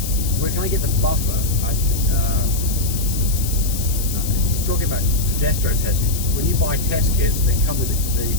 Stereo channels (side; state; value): left; noise; hiss, 7 dB below the sound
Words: where can I get the buffer? You're talking about progesterone testing. When you buy test kits, they come with the